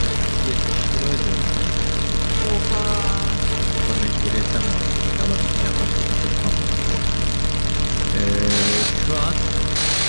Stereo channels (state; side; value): inverted; both; correlation -1.00